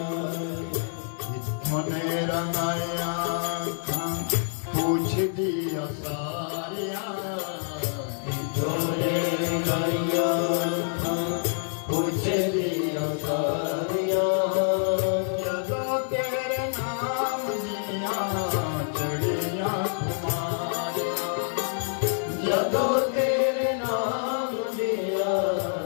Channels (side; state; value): right; silent; 60 dB below the other